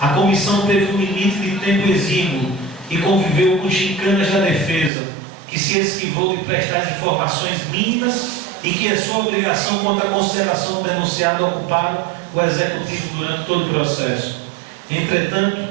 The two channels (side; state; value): left; drops out; at 4.9 s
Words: comissão teve um limite de tempo exíguo e conviveu com chicanas da defesa, que se esquivou de prestar as informações mínimas e que é sua obrigação quanto à consideração do denunciado ocuparam o executivo durante todo o processo. Entretanto,